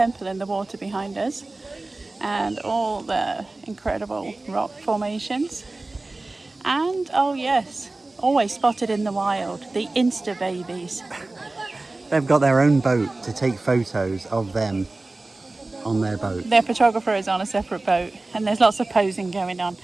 in the water behind us and all the incredible rock formations. And oh yes, always spotted in the wild, the Insta babies. They've got their own boat to take photos of them on their boat. Their photographer is on a separate boat and there's lots of posing going on.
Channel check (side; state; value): left; quieter; 3.1 dB